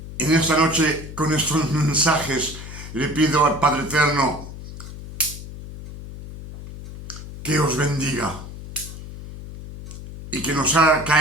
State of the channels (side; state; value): left; noise; hum, 12 dB below the sound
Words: En esta noche, con estos mensajes, le pido al Padre Eterno que os bendiga y que nos haga